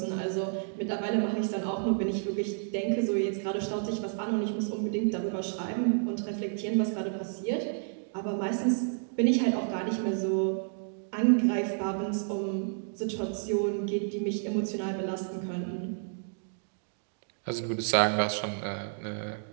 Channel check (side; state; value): left; silent; digital silence